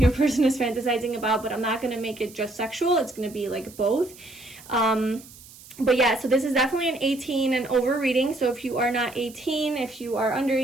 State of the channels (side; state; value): right; noise; hiss, 20 dB below the sound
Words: person is fantasizing about, but I'm not going to make it just sexual. It's going to be both. But yeah, so this is definitely an 18 and over reading. So if you are not 18, if you are under